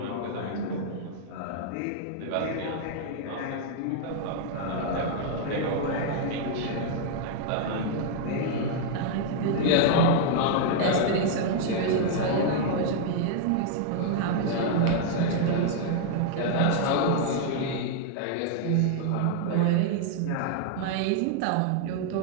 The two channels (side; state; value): both; different; correlation 0.00